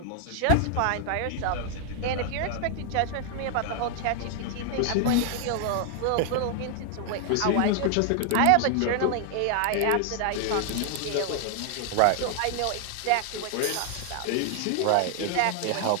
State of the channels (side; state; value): both; different; correlation 0.00